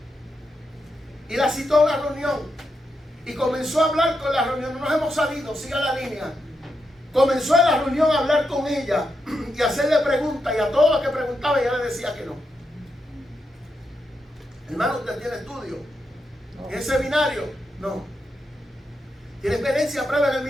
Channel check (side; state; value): both; normal; correlation 0.85